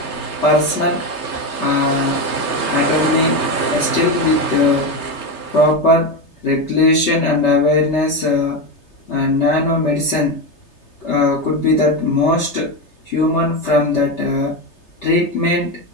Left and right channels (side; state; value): right; late; 3.3 ms